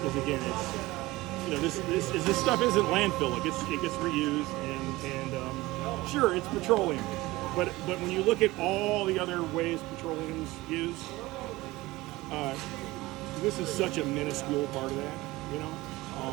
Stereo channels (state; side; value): quieter; left; 19.6 dB